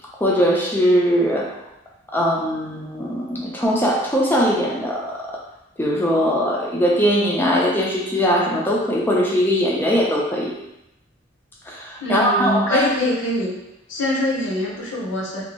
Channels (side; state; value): both; normal; correlation 0.53